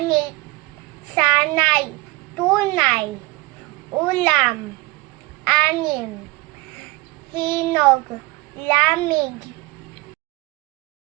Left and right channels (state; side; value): quieter; left; 22.3 dB